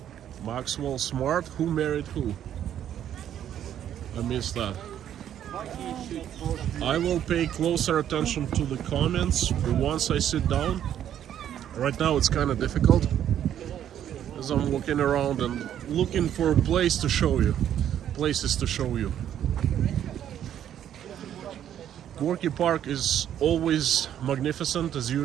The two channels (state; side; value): quieter; left; 10.4 dB